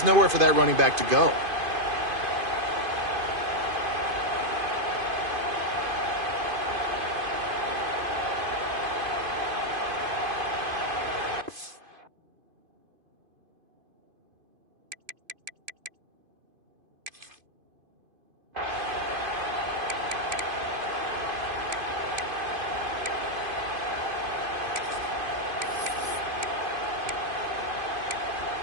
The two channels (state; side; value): late; left; 2.5 ms